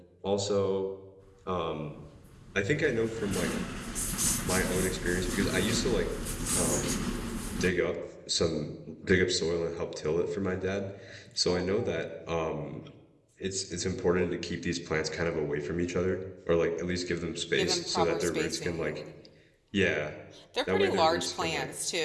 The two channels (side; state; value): both; identical; correlation 1.00